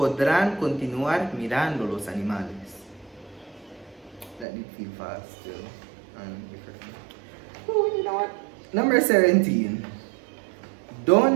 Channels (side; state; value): left; drops out; at 4.5 s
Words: continuar mirando los animales. That did feel fast still. Oh, you know what? Number 17.